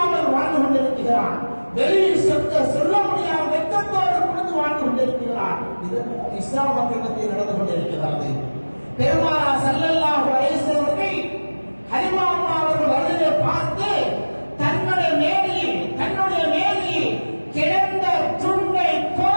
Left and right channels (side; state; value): both; inverted; correlation -1.00